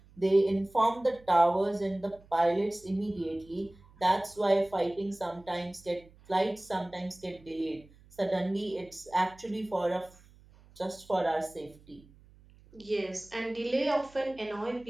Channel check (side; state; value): right; noise; hum, 26 dB below the sound